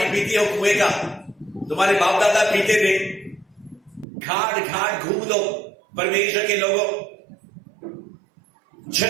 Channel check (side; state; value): left; drops out; at 4.0 s